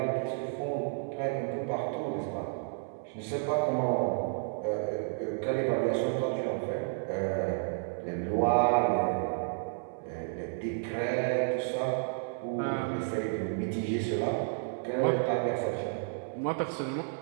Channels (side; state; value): left; silent; 57 dB below the other